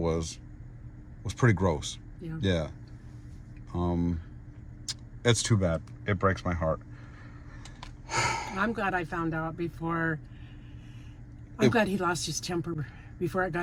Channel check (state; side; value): identical; both; correlation 1.00